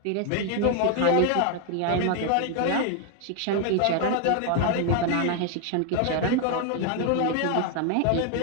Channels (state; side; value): different; both; correlation 0.01